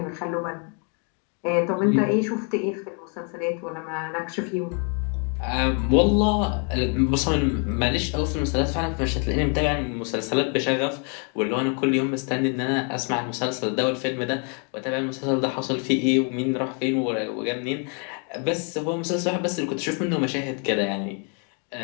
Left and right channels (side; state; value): right; quieter; 39.3 dB